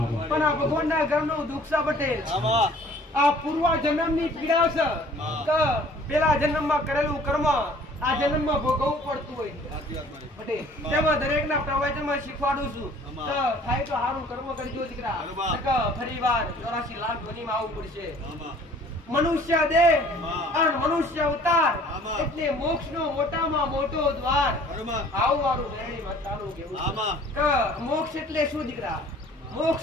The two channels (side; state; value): both; normal; correlation 0.53